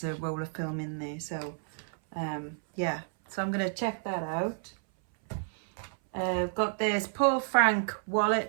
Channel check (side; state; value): left; silent; 57 dB below the other